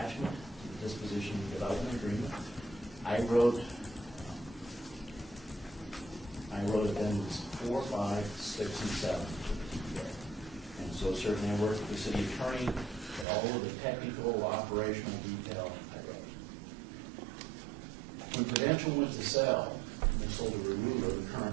to the disposition and development agreement. I wrote addendums 4, 5, 6, and 7 to the TPA. And so certainly I worked with the city attorney, but all of the technical, operational detail I wrote. When Prudential went to sell, and they sold to Rarula, the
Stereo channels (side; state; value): left; drops out; at 13.2 s